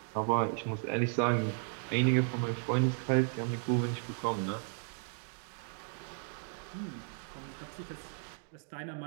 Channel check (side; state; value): left; silent; 55 dB below the other